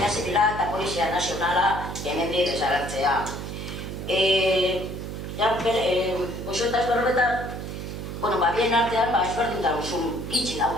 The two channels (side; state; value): right; noise; hum, 7 dB below the sound